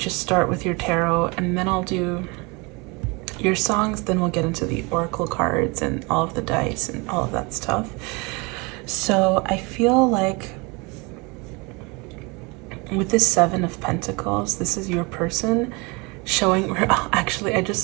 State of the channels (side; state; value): left; quieter; 27.7 dB